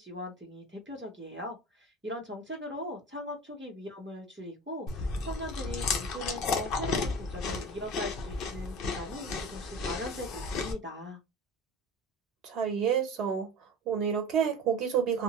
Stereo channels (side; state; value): both; normal; correlation 0.35